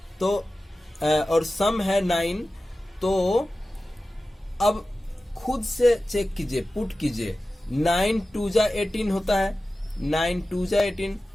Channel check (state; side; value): normal; both; correlation 0.95